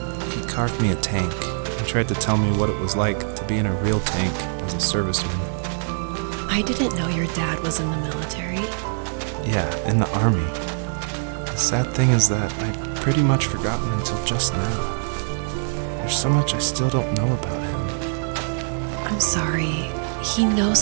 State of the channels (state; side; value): silent; left; 63 dB below the other